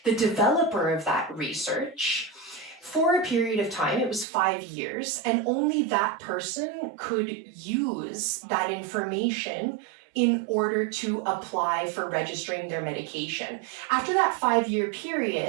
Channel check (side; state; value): left; drops out; at 4.2 s